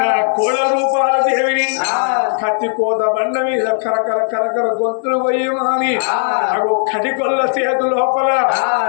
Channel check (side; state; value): right; silent; digital silence